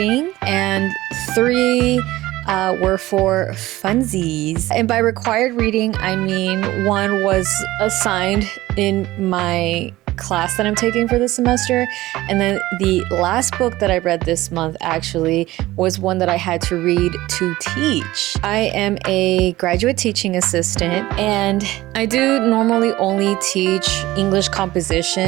and 3 were for funsies. And by required reading, I mean 1 was assigned in my class that I'm taking for this semester, and then the last book that I read this month actually was one that I had to read to teach. I am a graduate teaching assistant, and I do normally only teach English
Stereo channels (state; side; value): quieter; left; 17.3 dB